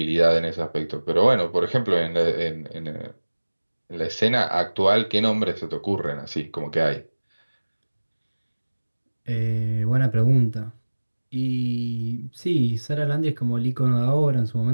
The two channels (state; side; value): inverted; both; correlation -1.00